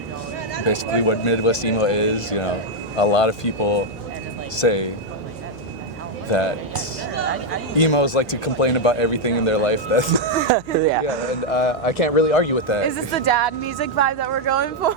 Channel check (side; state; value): left; noise; hum, 21 dB below the sound